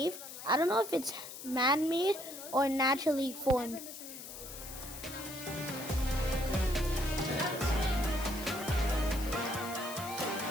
I don't know if it's man-made or naturally formed.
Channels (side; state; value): left; noise; hiss, 11 dB below the sound